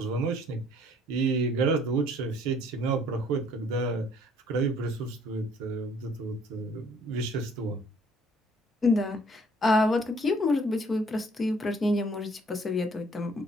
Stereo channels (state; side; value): normal; both; correlation 0.59